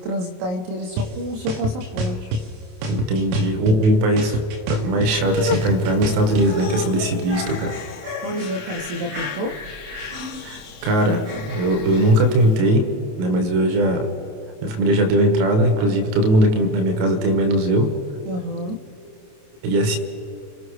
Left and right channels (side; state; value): left; late; 28 ms